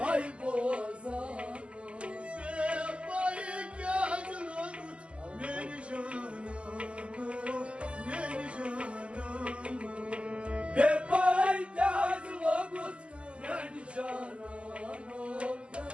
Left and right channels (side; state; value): left; late; 0.059 ms